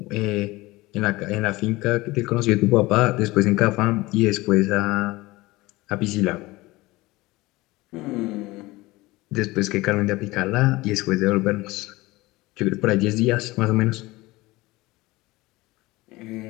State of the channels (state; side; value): quieter; right; 20.5 dB